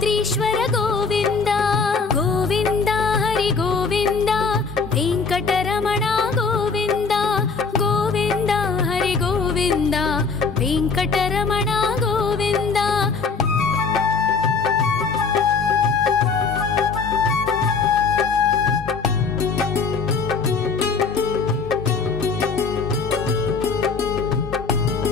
गोविंद गोविंद हरि गोविंद वेंकटरमण गोविंद गोविंद हरि गोविंद वेंकटरमण गोविंद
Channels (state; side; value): quieter; right; 4.8 dB